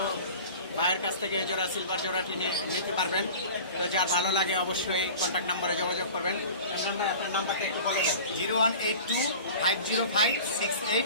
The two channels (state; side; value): inverted; both; correlation -0.39